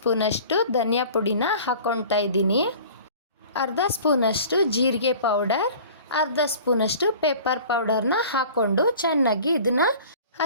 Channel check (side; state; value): both; inverted; correlation -0.44